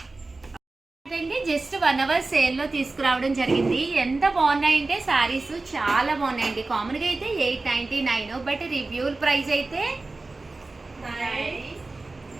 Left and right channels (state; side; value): quieter; left; 3.4 dB